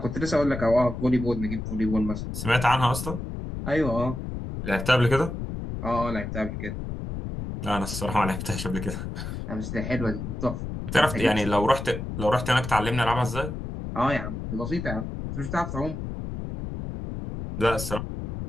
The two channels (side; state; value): left; noise; rumble, 6 dB below the sound